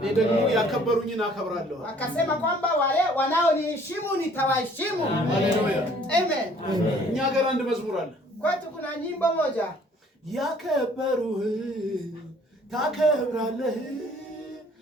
ደግሞ ያከበሩኝን አከብራለሁ። Akasema kwamba wale wanaoniheshimu nitawaheshimu. ሃሌሉያ Amen. እኛ ጋር አንድ መዝሙር አለ። Kwetu kuna nyimbo moja. ያከበሩህ ታከብራለህ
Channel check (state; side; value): normal; both; correlation 0.57